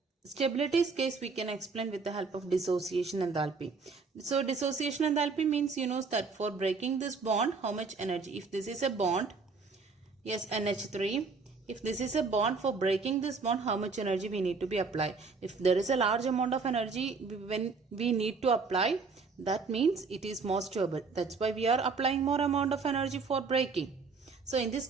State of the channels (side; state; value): left; quieter; 4.6 dB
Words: stability's case we can explain with the help of dissociation enthalpy. So dissociation enthalpy means you know that for breaking this bond, how much energy, if this is a bond, yes, NH3, if this is a bond, for breaking this bond, how much energy we need to be applied. If there is a large amount of energy when we need to apply, that means it is more stable. That's why we are applying more amount of energy for breaking. So in this